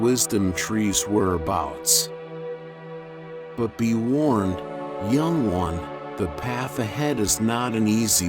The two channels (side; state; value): both; identical; correlation 1.00